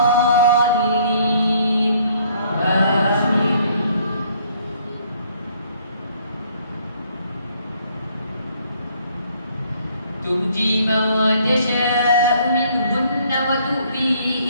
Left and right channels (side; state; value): both; inverted; correlation -0.63